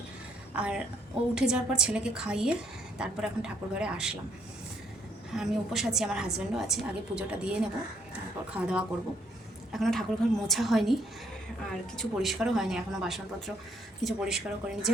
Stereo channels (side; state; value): both; normal; correlation 0.70